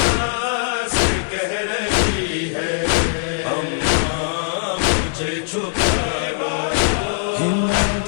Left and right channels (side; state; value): right; silent; 66 dB below the other